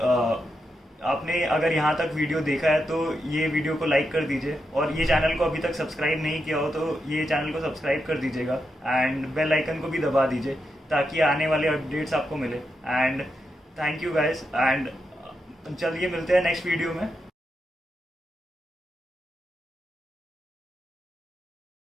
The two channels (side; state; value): both; normal; correlation 0.85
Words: आपने अगर यहाँ तक वीडियो देखा है तो ये वीडियो को लाइक कर दीजिए, और ये चैनल को अभी तक सब्सक्राइब नहीं किया हो तो ये चैनल को सब्सक्राइब कर दीजिएगा, एंड बेल आइकन को भी दबा दीजिए ताकि आने वाले अपडेट्स आपको मिले. And thank you guys. And चलिए मिलते हैं नेक्स्ट वीडियो में.